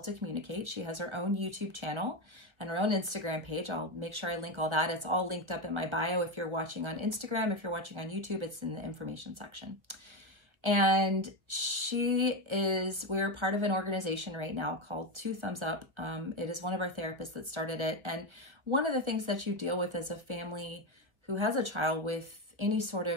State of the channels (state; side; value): late; left; 1.4 ms